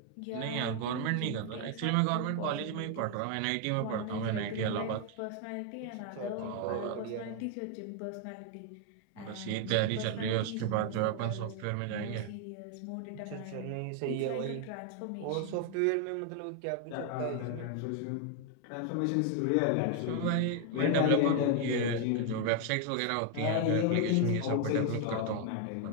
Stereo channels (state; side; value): different; both; correlation 0.00